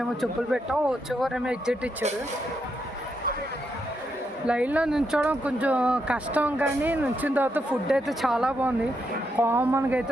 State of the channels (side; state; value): both; normal; correlation 0.81